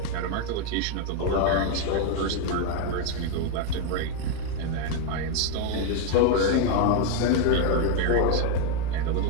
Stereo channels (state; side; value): different; both; correlation 0.01